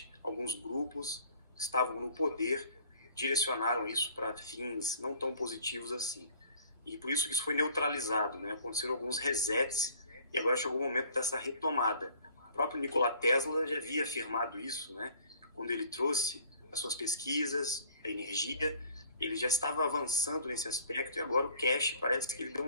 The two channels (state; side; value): inverted; both; correlation -0.52